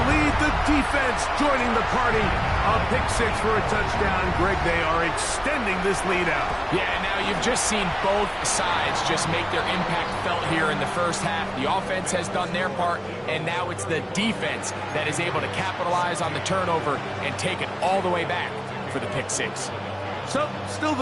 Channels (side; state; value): both; identical; correlation 1.00